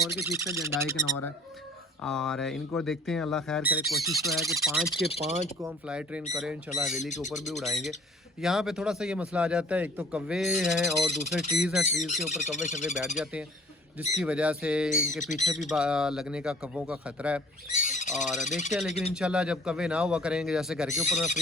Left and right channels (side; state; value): both; normal; correlation 0.51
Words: के चिक्स हैं, जंडाई कनौर है और इनको देखते हैं। अल्लाह खैर करे, कोशिश तो है कि 5 के 5 को हम फ्लाई ट्रेन करें इंशाल्लाह। हवेली के ऊपर भी उड़ाएंगे। यहाँ पे थोड़ा सा ये मसला आ जाता है, एक तो कव्वे हैं और दूसरे ट्रीज़ हैं। ट्रीज़ के ऊपर कव्वे शव्वे बैठ जाते हैं जिसकी वजह से इनके पीछे भी लगने का कव्वों का ख़तरा है। और देखते हैं, लेकिन इंशाल्लाह जब कव्वे ना हुआ करेंगे, जैसे घर के ऊपर मैं